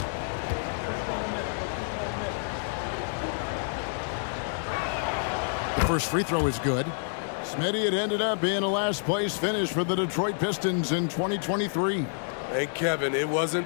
First free throw is good. Smitty, it ended up being a last place finish for the Detroit Pistons in 2023. Hey, Kevin, it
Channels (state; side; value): silent; right; digital silence